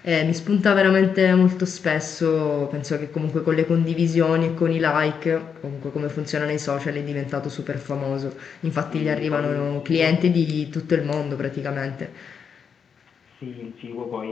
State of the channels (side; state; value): right; quieter; 6.8 dB